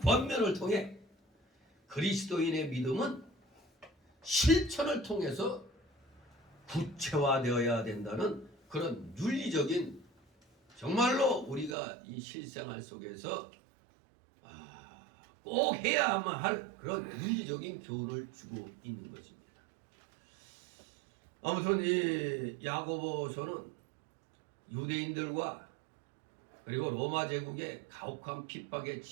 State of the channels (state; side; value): drops out; left; at 11.8 s